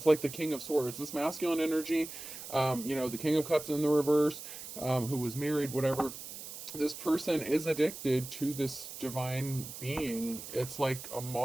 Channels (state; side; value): noise; right; hiss, 11 dB below the sound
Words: like the King of Swords. This masculine energy, the King of Cups in the reverse, who was married, whatever. This person is addicted to this divine being. It's like a